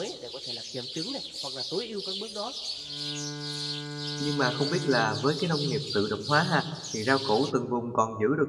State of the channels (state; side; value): identical; both; correlation 1.00